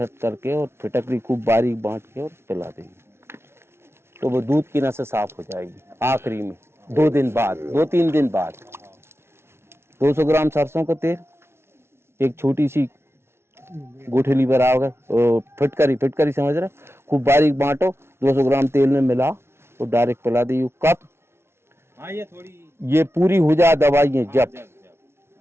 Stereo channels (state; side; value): late; left; 0.12 ms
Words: करके और फिटकरी खूब बारीक बांट के और पिला देंगे, तो वो दूध की नसें साफ हो जाएगी। आखिरी में 2-3 दिन बाद 200 ग्राम सरसों का तेल, एक छोटी सी गुठली बराबर फिटकरी समझ रहे, खूब बारीक बांटो, 200 ग्राम तेल में मिलाओ और डायरेक्ट पिला दी। कब ये पूरी हो जाए दवाइयाँ, जब